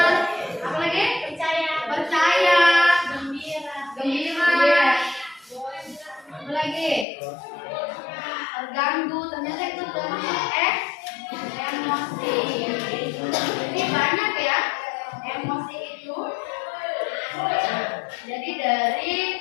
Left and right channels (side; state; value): right; drops out; at 7.1 s